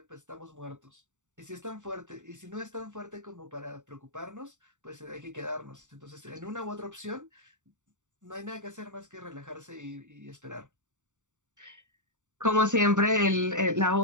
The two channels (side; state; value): left; late; 0.86 ms